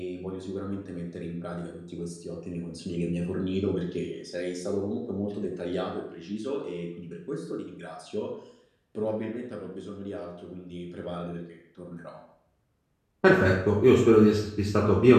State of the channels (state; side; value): identical; both; correlation 1.00